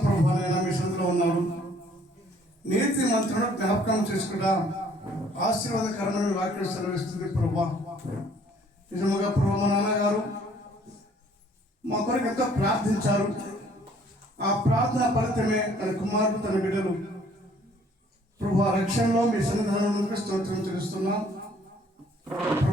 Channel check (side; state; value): both; normal; correlation 0.59